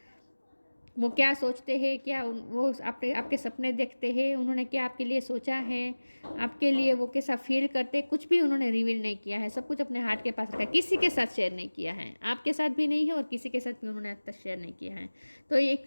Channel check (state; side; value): inverted; both; correlation -1.00